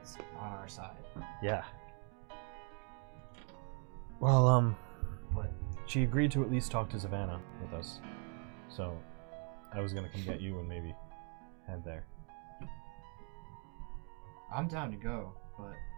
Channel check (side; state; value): left; quieter; 38.0 dB